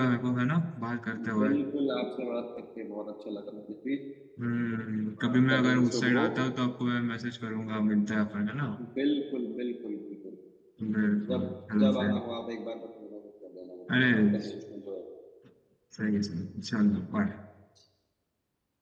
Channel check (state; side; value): identical; both; correlation 1.00